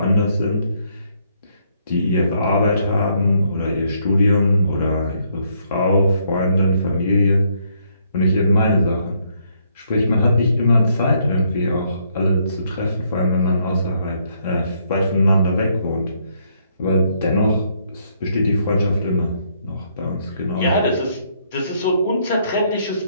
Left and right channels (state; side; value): inverted; both; correlation -0.71